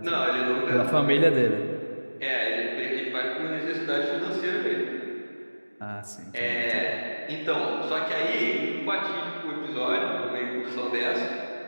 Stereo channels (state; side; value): inverted; both; correlation -1.00